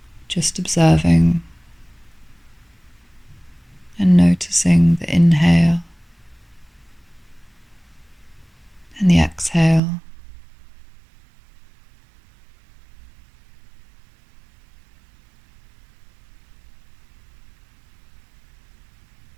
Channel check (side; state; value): left; drops out; at 9.8 s